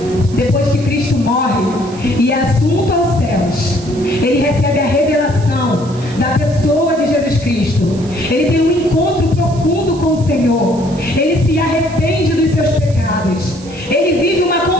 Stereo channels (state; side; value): noise; right; hiss, 21 dB below the sound